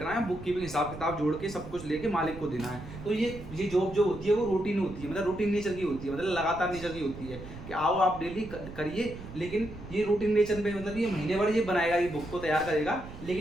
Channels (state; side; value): noise; right; rumble, 13 dB below the sound